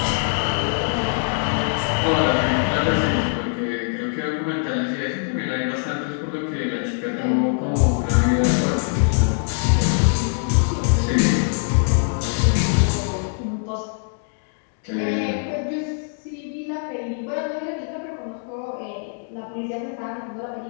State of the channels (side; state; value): right; silent; 64 dB below the other